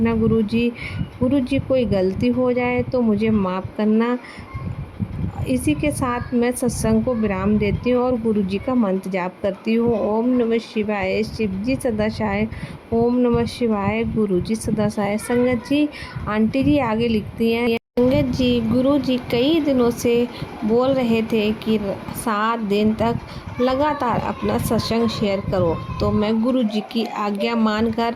गुरुजी। गुरुजी, कोई गलती हो जाए तो मुझे माफ़ करना। इसी के साथ मैं सत्संग को विराम देती हूँ और गुरु जी का मंत्र जाप करती हूँ। ओम नमः शिवाय, शिव जी सदा सहाय। ओम नमः शिवाय, गुरु जी सदा सहाय। संगत जी, आंटी जी आगे लिखती हैं, संगत जी, गुरु जी कई दिनों से बोल रहे थे कि 7 दिन तक लगातार अपना सत्संग शेयर करो, तो मैं गुरु जी की आज्ञा मानकर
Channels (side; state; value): both; identical; correlation 1.00